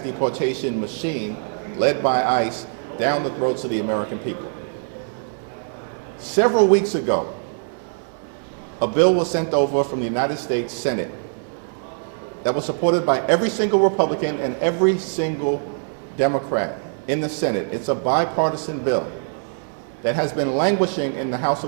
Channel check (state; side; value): silent; left; 64 dB below the other